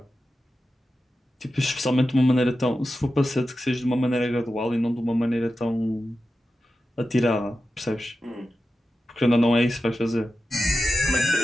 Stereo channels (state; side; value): normal; both; correlation 0.92